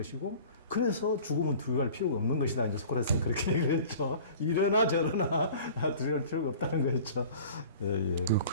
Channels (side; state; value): both; inverted; correlation -0.44